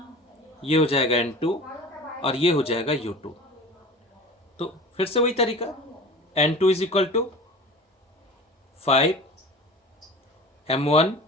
ये हो जाएगा N2 और ये हो जाएगा U2। तो फिर से वही तरीका, N2 is equal to 5 M1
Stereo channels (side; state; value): both; normal; correlation 0.37